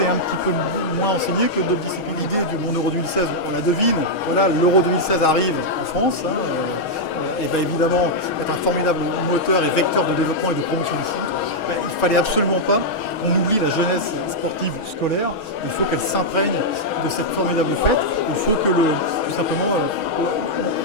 est un petit peu moins enseigné que d'autres disciplines. L'idée du Monde Euro 2016, on la devine. Voilà, l'Euro 2016 arrive en France. Et va évidemment être un formidable moteur et vecteur de développement et de promotion du foot. Il ne fallait absolument pas qu'on oublie la jeunesse sportive scolaire. Il faut qu'elle s'imprègne de cette formidable fête. Il faut que tout simplement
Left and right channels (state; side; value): late; right; 6.3 ms